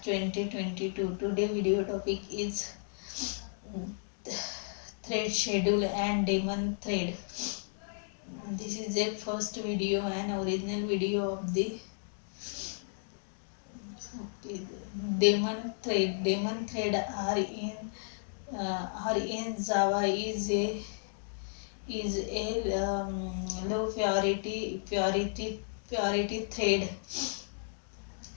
2022. Today video topic is um, thread schedule and daemon thread. This is the first video and original video of the daemon thread. Daemon thread are in Java is a low purity thread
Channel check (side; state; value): right; silent; digital silence